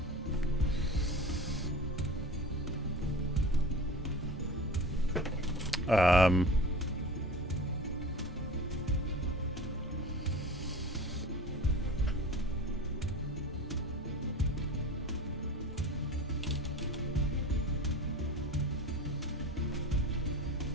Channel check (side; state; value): both; normal; correlation 0.35